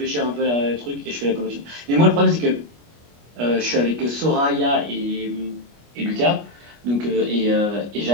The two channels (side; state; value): left; late; 25 ms